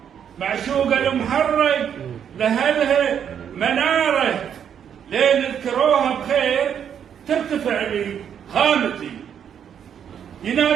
معشوقة المحرك لهلها مناره، لين اذكروها بخير ترتفع لي خامتي.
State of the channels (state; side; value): quieter; left; 8.5 dB